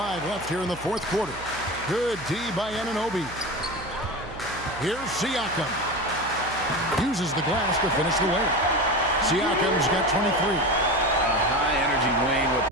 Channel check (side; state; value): right; noise; hum, 15 dB below the sound